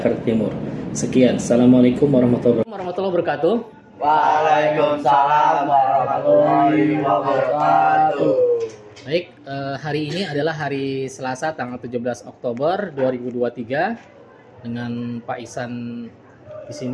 Timur. Sekian. Assalamualaikum warahmatullahi wabarakatuh. Waalaikumsalam warahmatullahi wabarakatuh. Baik, hari ini adalah hari Selasa tanggal 17 Oktober 2023 dengan Pak Ihsan di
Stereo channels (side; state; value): both; identical; correlation 1.00